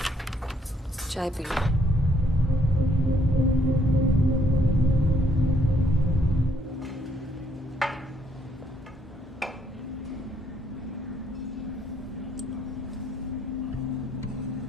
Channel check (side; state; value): both; normal; correlation 0.69